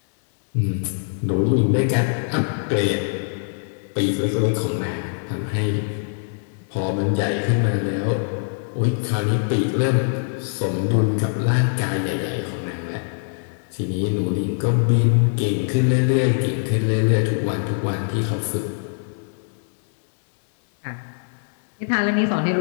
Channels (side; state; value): right; silent; digital silence